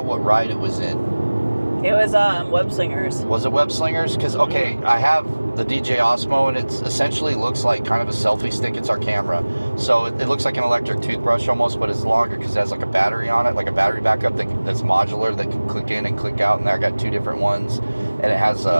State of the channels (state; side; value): inverted; both; correlation -1.00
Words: what ride it was in. It was Web Slingers. Was it Web Slingers? Because, okay, I have the DJ Osmo, and it essentially looks like kind of a selfie stick. It's our camera. So it looks like an electric toothbrush almost, but it's longer because it has like a battery on it, like a battery backup that's modular that can click in and click out. And I got 2 different ones. And it has